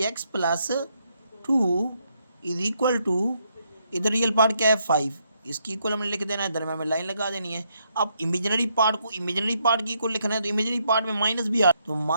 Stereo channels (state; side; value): inverted; both; correlation -0.76